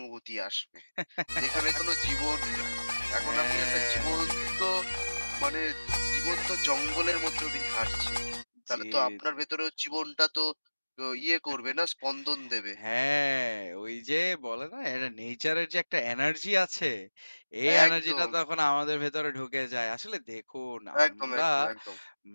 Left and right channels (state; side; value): inverted; both; correlation -1.00